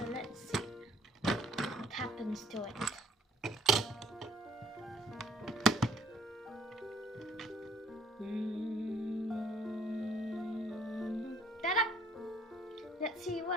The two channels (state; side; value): normal; both; correlation 0.61